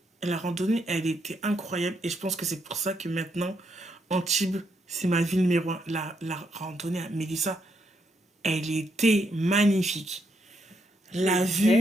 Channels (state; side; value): normal; both; correlation 0.77